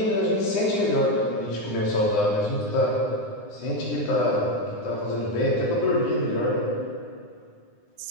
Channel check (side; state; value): right; late; 9.8 ms